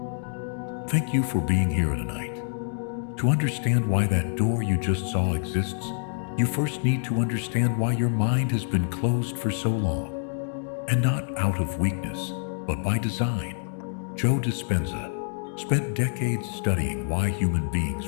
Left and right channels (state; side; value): silent; right; 60 dB below the other